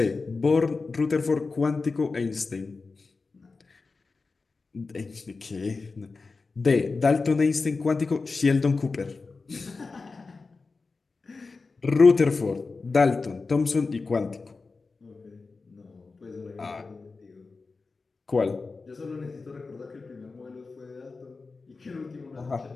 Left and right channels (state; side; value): quieter; right; 4.1 dB